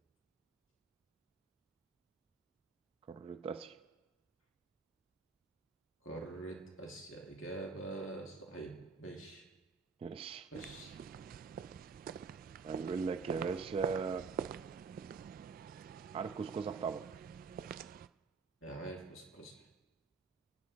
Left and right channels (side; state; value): left; quieter; 5.0 dB